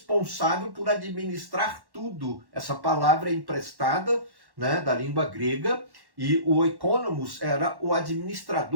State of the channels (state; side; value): late; left; 1.1 ms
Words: por administrar tudo. Essa palavra é emprestada, né, da língua grega, e o oikonomos era o